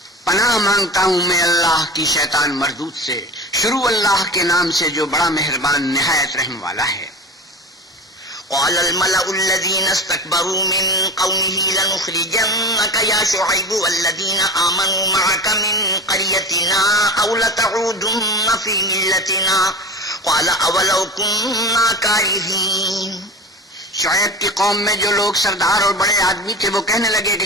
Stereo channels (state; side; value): normal; both; correlation 0.32